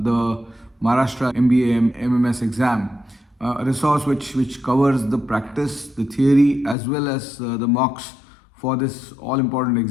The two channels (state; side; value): drops out; right; at 6.8 s